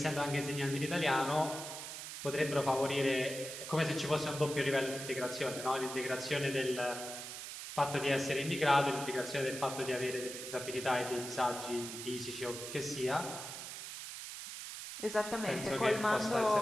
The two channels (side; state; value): right; noise; hiss, 8 dB below the sound